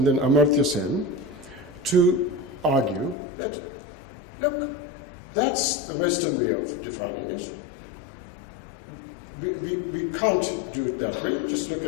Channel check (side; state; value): right; drops out; at 3.2 s